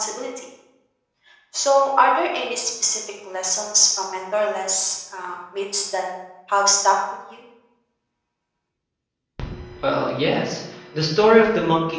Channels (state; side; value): identical; both; correlation 1.00